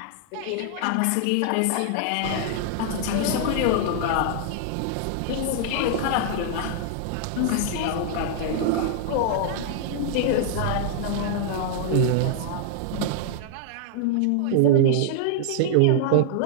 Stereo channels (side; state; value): both; different; correlation -0.01